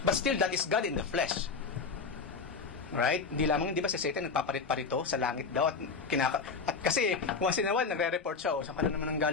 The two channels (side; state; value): right; quieter; 4.9 dB